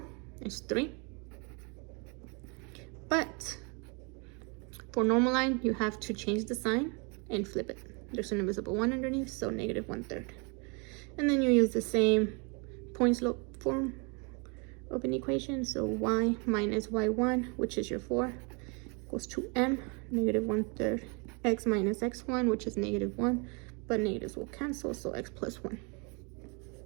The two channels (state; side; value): quieter; left; 32.7 dB